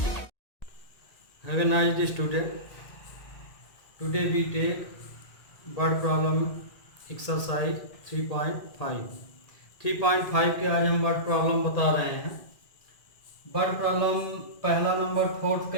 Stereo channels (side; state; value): right; late; 1.8 ms